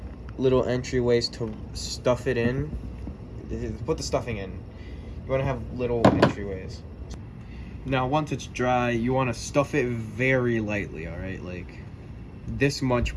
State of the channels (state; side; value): identical; both; correlation 1.00